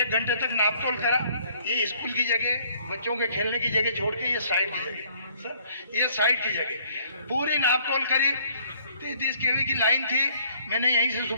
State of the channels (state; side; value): inverted; both; correlation -0.61